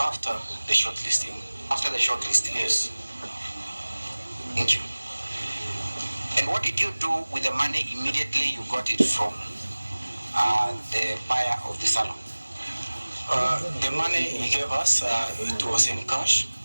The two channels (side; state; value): both; inverted; correlation -1.00